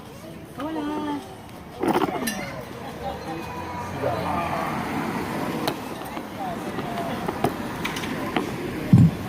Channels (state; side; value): identical; both; correlation 1.00